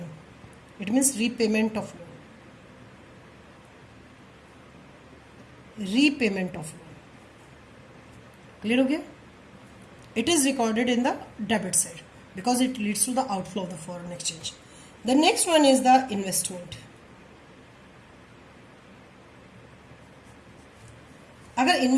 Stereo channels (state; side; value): identical; both; correlation 1.00